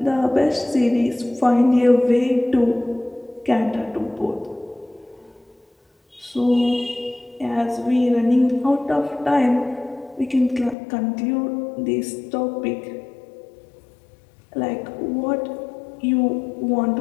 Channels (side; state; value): right; drops out; at 10.8 s